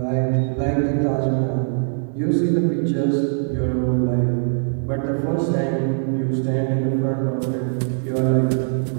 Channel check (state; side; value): silent; left; digital silence